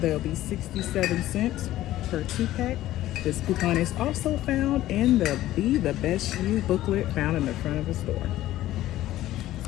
be 67 cents per 2-pack. This coupon is also found in the Be the Best You booklet found in the front of the store.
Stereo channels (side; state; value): right; quieter; 14.6 dB